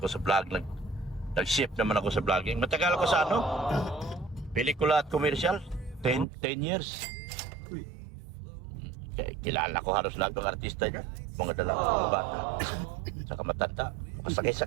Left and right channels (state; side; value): drops out; left; at 6.2 s